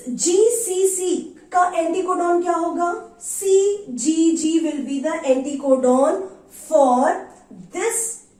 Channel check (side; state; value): both; identical; correlation 1.00